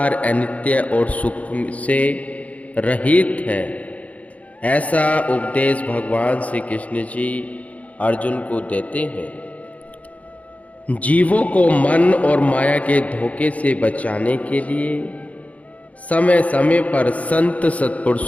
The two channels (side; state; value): right; late; 0.068 ms